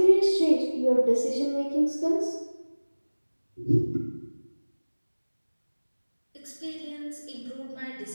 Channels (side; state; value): both; inverted; correlation -1.00